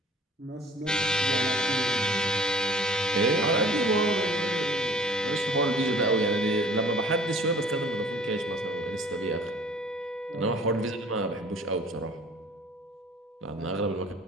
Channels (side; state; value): both; normal; correlation 0.50